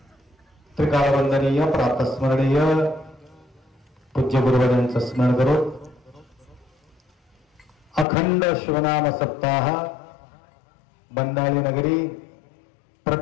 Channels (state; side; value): drops out; right; at 8.1 s